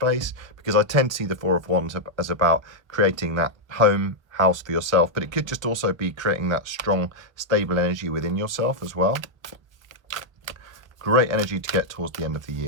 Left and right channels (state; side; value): late; left; 1.1 ms